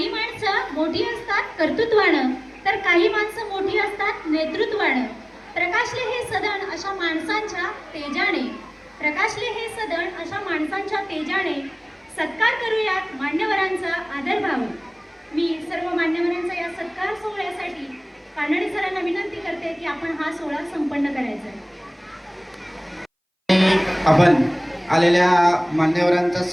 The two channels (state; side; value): identical; both; correlation 1.00